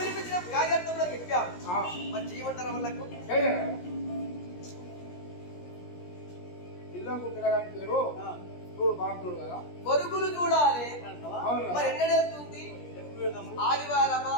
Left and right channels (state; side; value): late; right; 17 ms